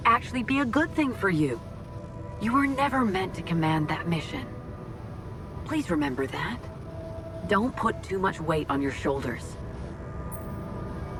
actually be a good thing for you. You were never meant to command that mission. Please remember that. Don't put too much weight on your shoulders.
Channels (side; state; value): both; identical; correlation 1.00